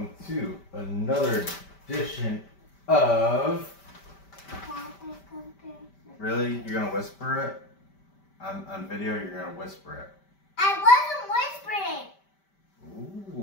to another edition of... Really? You're gonna whisper it? On video, you're gonna whisper it. I wasn't whispering!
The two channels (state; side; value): late; right; 5.1 ms